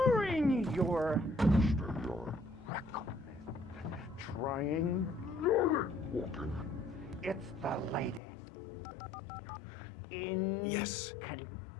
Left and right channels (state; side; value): drops out; right; at 8.2 s